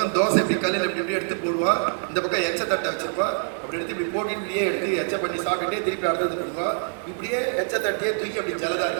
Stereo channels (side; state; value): left; silent; digital silence